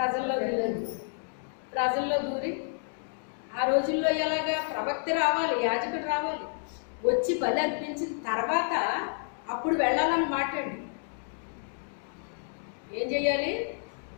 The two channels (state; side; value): silent; right; 58 dB below the other